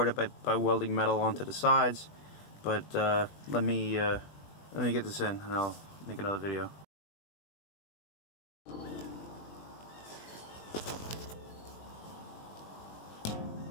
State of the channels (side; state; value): right; late; 20 ms